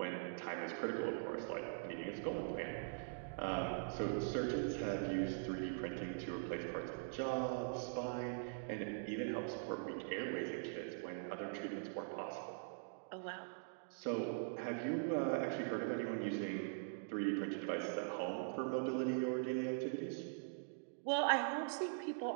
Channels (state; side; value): silent; left; digital silence